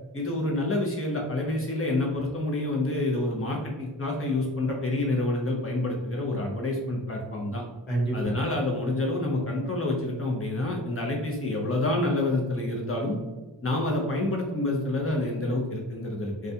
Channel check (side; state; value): both; normal; correlation 0.42